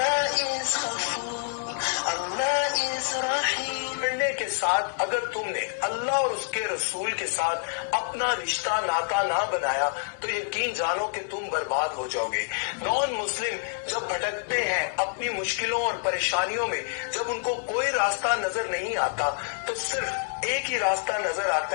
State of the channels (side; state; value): right; silent; 60 dB below the other